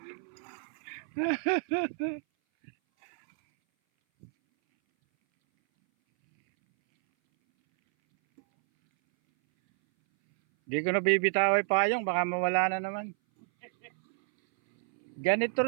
Di ko na bibitaway payong, baka mawala na naman. Ganito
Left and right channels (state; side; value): silent; left; 58 dB below the other